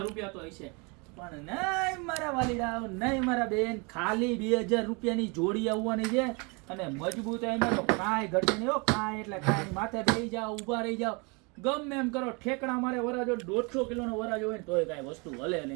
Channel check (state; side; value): quieter; left; 30.6 dB